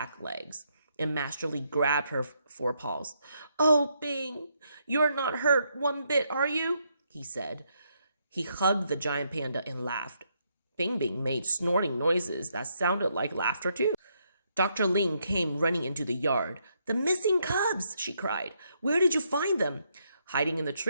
legs, and Master Li grabbed her forepaws. Oh, Bing, you're not hurt one bit, are you? He said. He hugged the giant panda and laughed. Bing Bing made snorting noises that sounded like laughter too. Dr. Ling came running into the yard. The missing cubs, she cried. Where did you find them? Hiding in the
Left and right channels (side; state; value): both; inverted; correlation -0.76